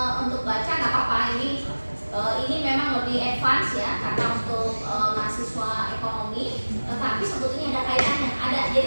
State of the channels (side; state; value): both; inverted; correlation -1.00